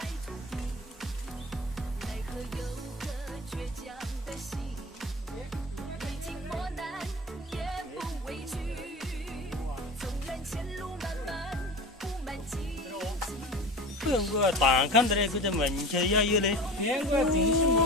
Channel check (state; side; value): normal; both; correlation 0.33